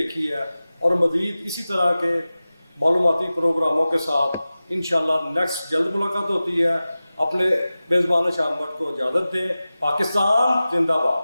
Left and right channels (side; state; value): both; inverted; correlation -0.96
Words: ہے, اور مزید اسی طرح کے معلوماتی پروگراموں کے ساتھ انشاءاللہ نیکسٹ جلد ملاقات ہوتی ہے. اپنے میزبان شام وقت کو اجازت دیں. پاکستان زندہ